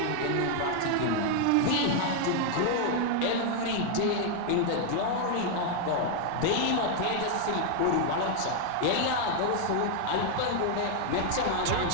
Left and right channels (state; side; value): different; both; correlation 0.00